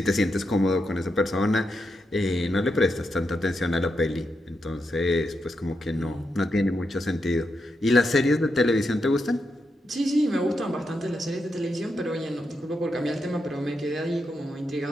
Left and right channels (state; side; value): normal; both; correlation 0.84